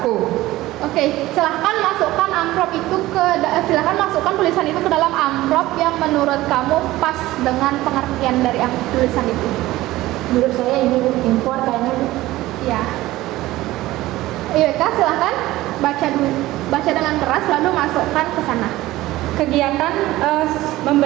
Oke, silahkan masukkan amplop itu silahkan masukkan tulisan itu ke dalam amplop yang menurut kamu pas dengan pengertian dari tulisan itu. Menurut saya ini impor kayaknya. Ya. Iya Kak, silahkan baca dulu. Baca dengan keras lalu masukkan ke sana. Kegiatan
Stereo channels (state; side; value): quieter; left; 17.1 dB